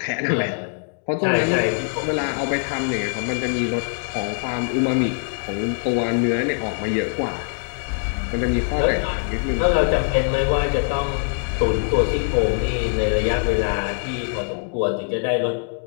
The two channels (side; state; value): right; silent; digital silence